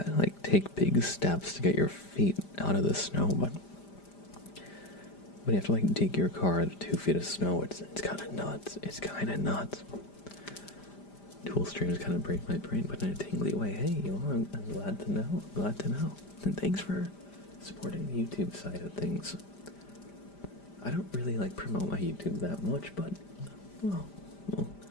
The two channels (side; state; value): right; late; 5.0 ms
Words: like take big steps to get your feet out of the snow, but when you have to like dig your car out of 2 feet of snow, it's kind of nuts. It's kind of nuts. Tool streams kind of break my brain, but in a tingly way. Hey, I'm glad to know. I'm glad to know. And thanks for supporting the YouTube side of things. I don't really like promote my YouTube that much, but well, we'll